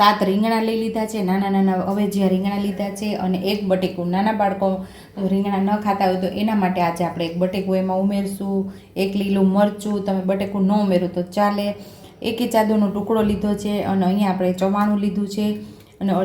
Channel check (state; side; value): identical; both; correlation 1.00